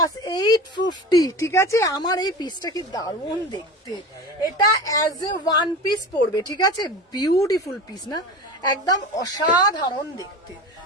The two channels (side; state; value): both; normal; correlation 0.31